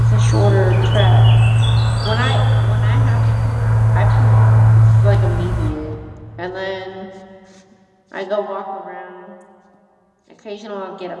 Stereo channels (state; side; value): identical; both; correlation 1.00